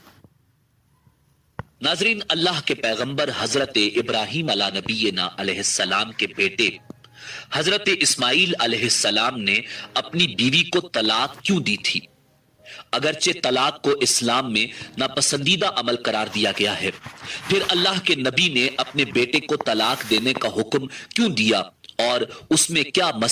ناظرین، اللہ کے پیغمبر حضرت ابراہیم علیہ نبینا علیہ السلام کے بیٹے حضرت اسماعیل علیہ السلام نے اپنی بیوی کو طلاق کیوں دی تھی؟ اگرچہ طلاق کو اسلام میں ناپسندیدہ عمل قرار دیا گیا ہے، پھر اللہ کے نبی نے اپنے بیٹے کو طلاق دینے کا حکم کیوں دیا، اور اس میں کیا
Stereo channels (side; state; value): both; identical; correlation 1.00